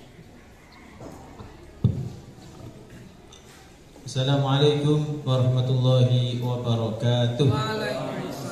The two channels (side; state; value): both; identical; correlation 1.00